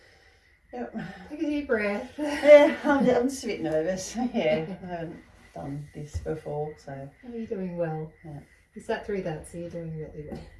Yep. Take a deep breath. Yeah, I'm just a bit nervous. Yeah, I haven't done this before, so. Oh, you're doing well. Yeah. You sat through that, so you're doing really well.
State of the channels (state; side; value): identical; both; correlation 1.00